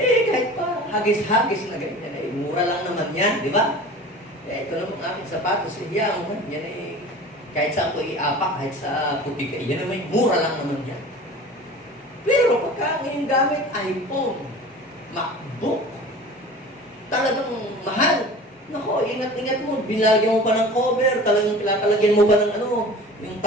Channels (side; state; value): both; normal; correlation 0.40